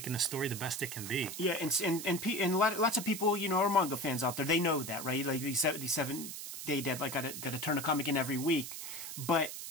the story the best it can be. Yeah, and lots of people, you know, are manga fans out there. They know that, right? Like, these 7-day deadline, got to turn a comic in every week. But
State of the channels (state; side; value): noise; right; hiss, 8 dB below the sound